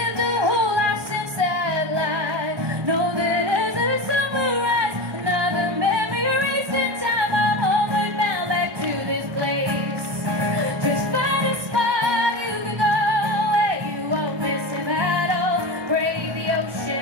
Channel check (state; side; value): late; left; 1.1 ms